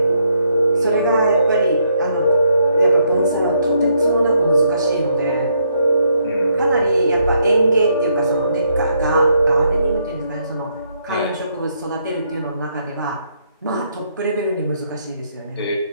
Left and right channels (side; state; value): both; inverted; correlation -0.74